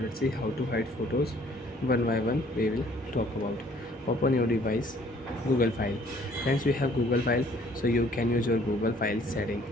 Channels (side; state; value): both; normal; correlation 0.59